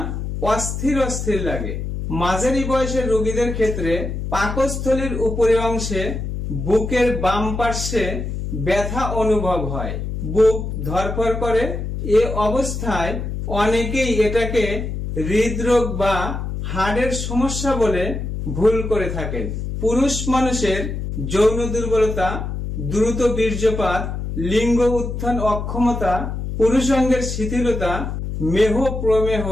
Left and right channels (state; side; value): noise; left; hum, 4 dB below the sound